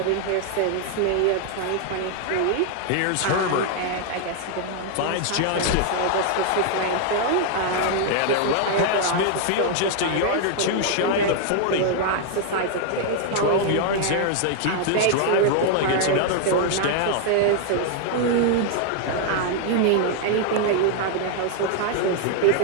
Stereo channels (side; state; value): both; different; correlation 0.00